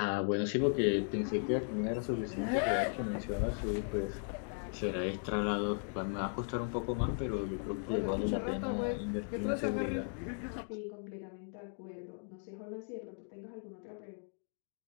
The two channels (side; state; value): right; silent; 53 dB below the other